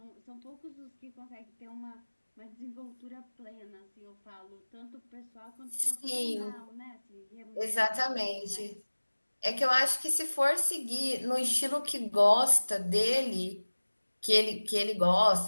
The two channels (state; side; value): inverted; both; correlation -1.00